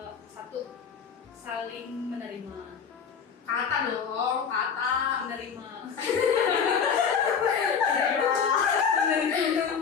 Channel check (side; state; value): right; quieter; 6.7 dB